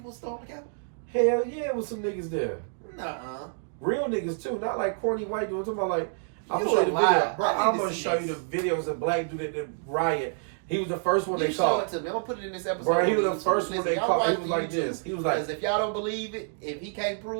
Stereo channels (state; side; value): silent; left; 59 dB below the other